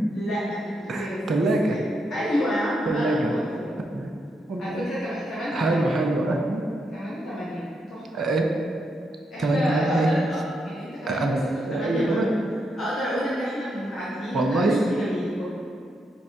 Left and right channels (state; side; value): normal; both; correlation 0.81